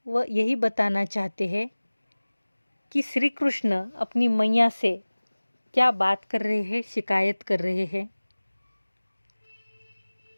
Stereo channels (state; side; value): inverted; both; correlation -1.00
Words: वह यही बताना चाहते हैं कि श्री कृष्ण अपनी मैया से क्या बात कर रहे हैं, शिकायत कर रहे हैं।